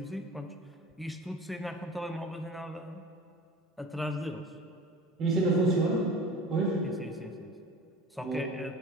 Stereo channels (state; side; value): normal; both; correlation 0.39